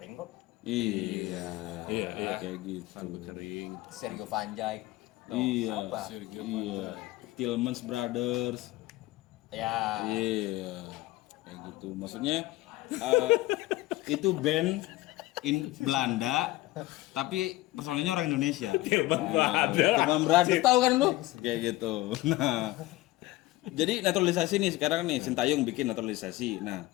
kok. Iya. Iya. Kayak gitu. Kering. Sergio Van Dijk. Tuh, Iya. apa? Iya. Tillmans Brothers. Ya. Iya. Kayak gitu. Maksudnya itu band in Belanda tapi personelnya orang Indonesia. Tilman Brothers. Tillmans Brothers tahu kan lu? Kayak gitu. Nah. Jadi naturalisasi nih sekarang nih Sintayong bikin naturalisasi. Nah,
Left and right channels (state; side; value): quieter; right; 18.4 dB